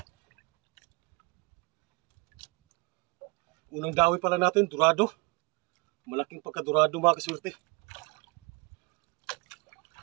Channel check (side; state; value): left; quieter; 27.5 dB